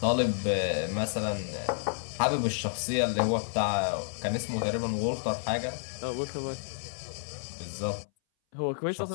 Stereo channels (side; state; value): right; silent; 58 dB below the other